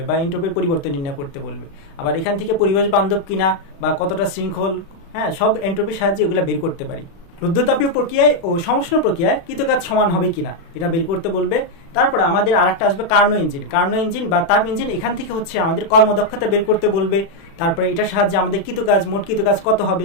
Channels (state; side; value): late; right; 36 ms